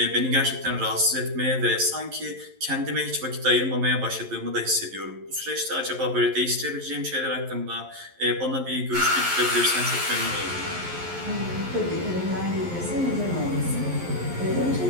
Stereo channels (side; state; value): left; late; 11 ms